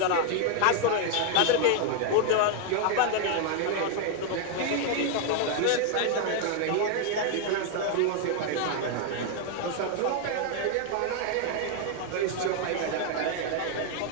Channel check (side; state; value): both; different; correlation 0.00